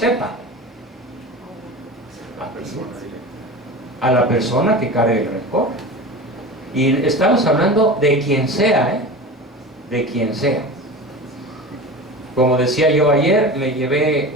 A la persona que cargue el rencor. Y estamos hablando de quien sea, de quien sea. Como decía yo ayer, me llevé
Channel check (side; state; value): both; normal; correlation 0.32